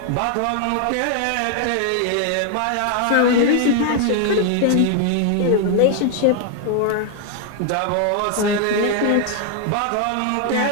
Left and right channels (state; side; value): different; both; correlation 0.00